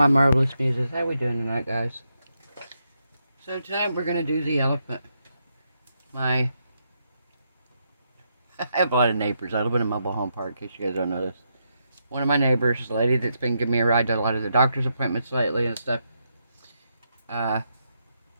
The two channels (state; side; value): inverted; both; correlation -0.81